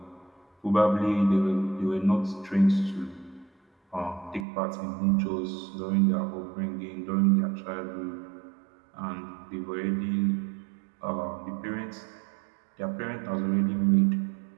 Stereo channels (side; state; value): left; drops out; at 4.5 s